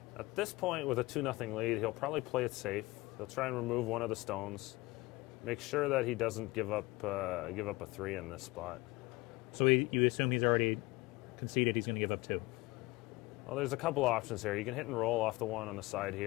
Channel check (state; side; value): quieter; right; 21.5 dB